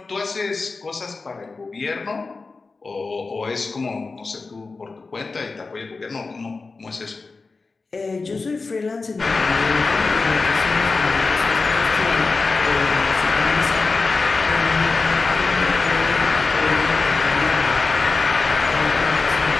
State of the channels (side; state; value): right; quieter; 4.0 dB